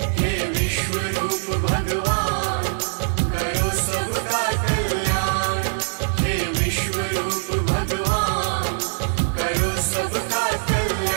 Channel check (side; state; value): left; silent; digital silence